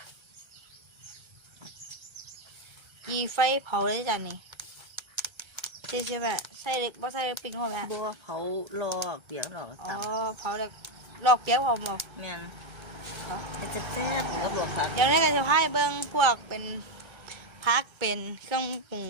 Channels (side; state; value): left; late; 1.3 ms